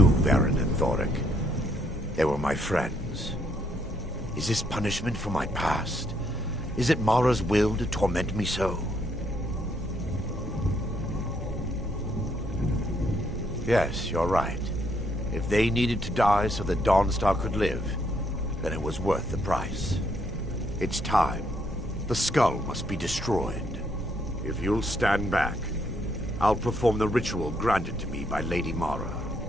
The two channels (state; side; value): normal; both; correlation 0.72